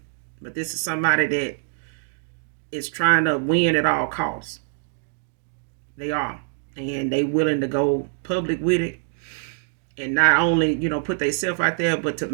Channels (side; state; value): left; silent; digital silence